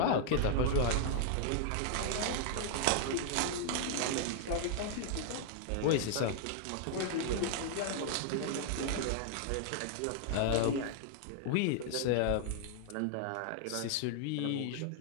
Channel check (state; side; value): different; both; correlation 0.00